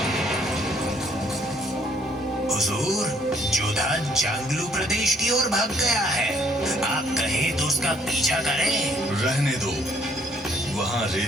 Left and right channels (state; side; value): normal; both; correlation 0.64